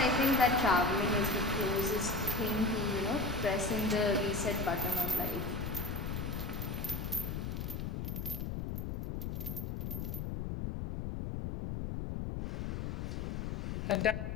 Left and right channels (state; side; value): noise; left; rumble, 3 dB below the sound